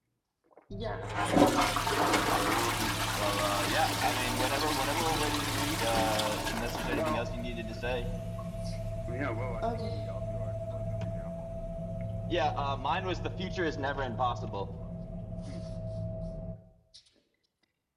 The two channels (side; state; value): both; identical; correlation 1.00